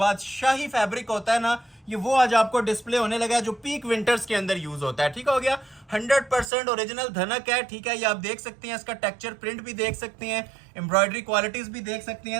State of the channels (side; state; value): left; drops out; at 6.5 s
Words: फैब्रिक होता है ना, ये वो आज आपको डिस्प्ले होने लगा है, जो पीक विंटर्स के अंदर यूज होता है, ठीक हो गया। 100% ओरिजिनल धनक है, ठीक है। ये आप देख सकते हैं, इसका टेक्सचर प्रिंट भी देख सकते हैं, एम्ब्रॉयडरी क्वालिटीज भी देख सकते